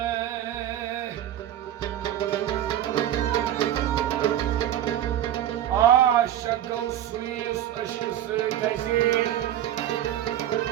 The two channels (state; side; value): quieter; left; 11.6 dB